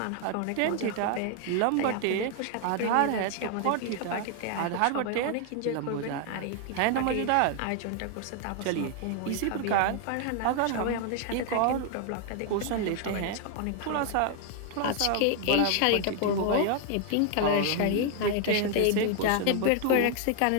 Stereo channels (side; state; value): both; different; correlation 0.00